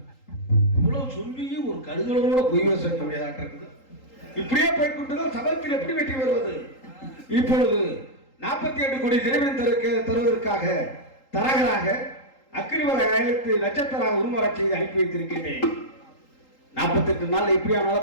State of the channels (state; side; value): late; right; 3.8 ms